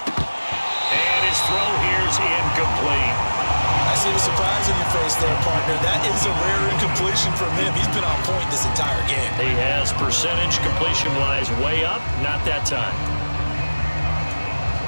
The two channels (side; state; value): both; inverted; correlation -1.00